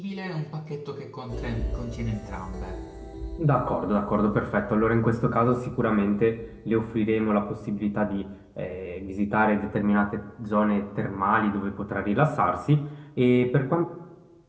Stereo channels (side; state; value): both; identical; correlation 1.00